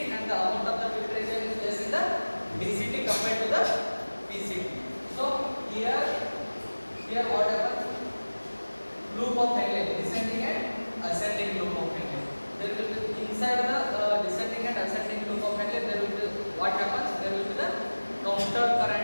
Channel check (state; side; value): inverted; both; correlation -1.00